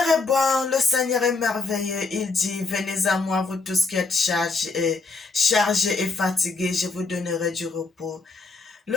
est bon, le Seigneur est merveilleux. Il dit, venez à moi, vous tous qui êtes chargés et fatigués, je vous donnerai du repos.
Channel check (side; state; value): right; quieter; 3.9 dB